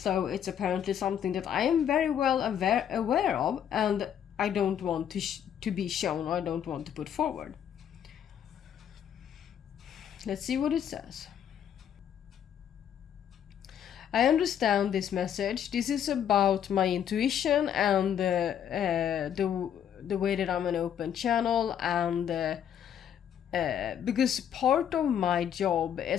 it's apparently something that I am very well aware of, and I don't want to be shown, or I don't want to put forward. Let's see what it says. I understand this message. This is about my intuition and the way that I'm an open channel, and because part of my job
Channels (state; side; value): quieter; right; 9.2 dB